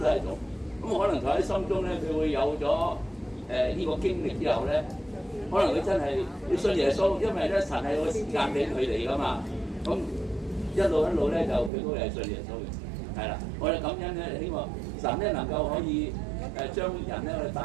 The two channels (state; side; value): drops out; left; at 11.7 s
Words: 係一種。咁可能佢喺心中咧，佢會有咗呢個經歷之後咧，可能佢真係要信耶穌，因為咧神係有個時間俾佢哋噶嘛。咁一路咧就佢都係信耶穌嘅。係啦，我哋感恩咧，希望神咧能夠可以將人咧